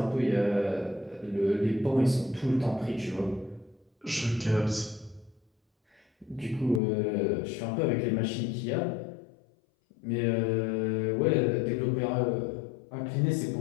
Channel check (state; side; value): drops out; right; at 6.8 s